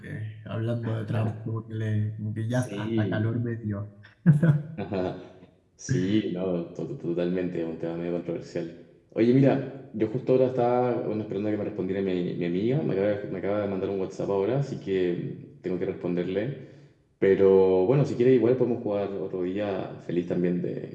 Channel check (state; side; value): identical; both; correlation 1.00